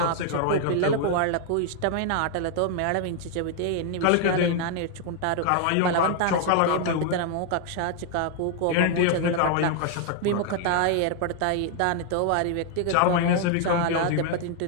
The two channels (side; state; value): both; different; correlation 0.00